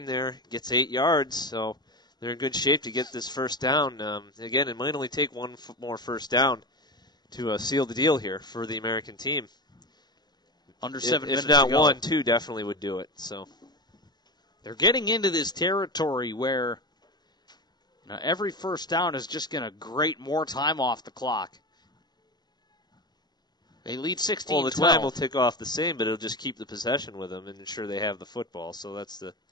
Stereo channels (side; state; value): right; late; 0.20 ms